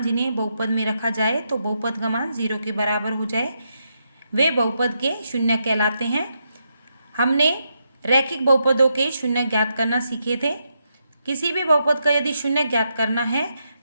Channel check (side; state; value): both; inverted; correlation -0.82